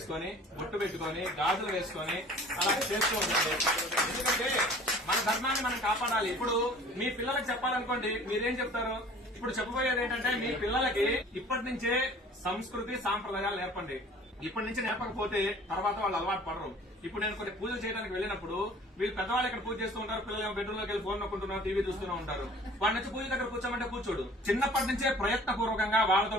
బొట్టు పెట్టుకొని, గాజులు వేసుకొని అలా చేస్తూ ఉండాలి. ఎందుకంటే మన ధర్మాన్ని మనం కాపాడాలి. ఇప్పుడు మీ పిల్లలకు చెప్పాలనుకోండి, మీరేం చెప్తారు? ఇప్పుడు చెప్పబోయేది ఏంటంటే, మీ పిల్లలకి ఇప్పటి నుంచే సంస్కృతి సాంప్రదాయాలు నేర్పండి. ఇప్పటి నుంచి నేర్పకపోతే తర్వాత వాళ్ళు అలవాటు పడరు. ఇప్పుడు నేను కొన్ని పూజలు చేయడానికి వెళ్ళినప్పుడు వీళ్ళు పెద్దవాళ్ళు ఇక్కడ పూజ చేస్తూ ఉంటారు, పిల్లలు బెడ్రూమ్ లోకి వెళ్ళి ఫోన్ నొక్కుంటున్నారు, టీవీ చూస్తూనే ఉంటారు. వాడి నుంచి పూజ దగ్గర కూర్చోమంటే కూర్చోడు. చిన్నప్పటి నుంచే ప్రయత్నపూర్వకంగా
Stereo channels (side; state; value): both; normal; correlation 0.48